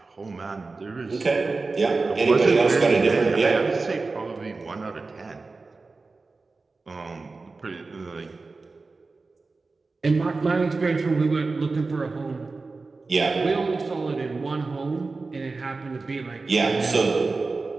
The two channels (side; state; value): left; quieter; 3.9 dB